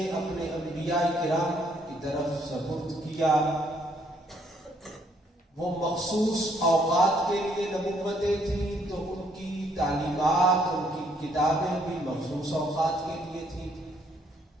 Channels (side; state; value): both; normal; correlation 0.68